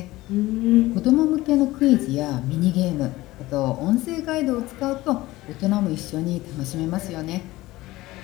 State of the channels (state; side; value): quieter; right; 18.3 dB